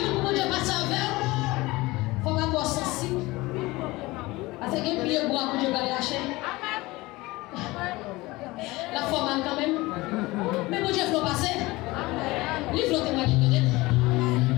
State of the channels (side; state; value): right; quieter; 20.9 dB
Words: beaucoup de gens qui passent avec. Il faut avoir sensible. Parce que les pieds bois pour Dieu va lâcher. La forme quand même. Mais pour Dieu, il faut passer. Il faut témoigner de Dieu.